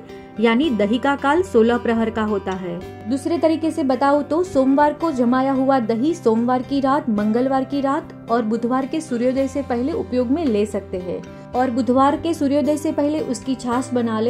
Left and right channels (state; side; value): identical; both; correlation 1.00